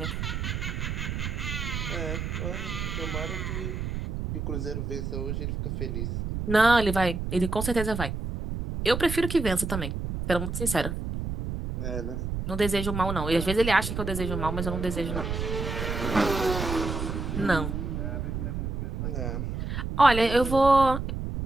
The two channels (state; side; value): noise; right; rumble, 3 dB below the sound